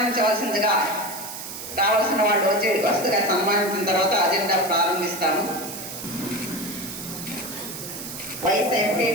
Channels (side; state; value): right; noise; hiss, 9 dB below the sound